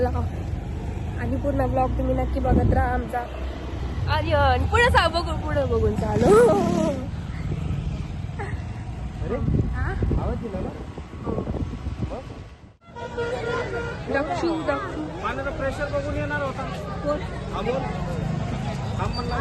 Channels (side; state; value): both; identical; correlation 1.00